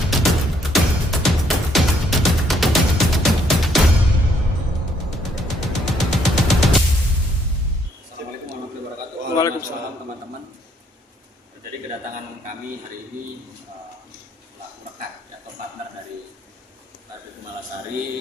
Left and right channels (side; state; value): both; normal; correlation 0.69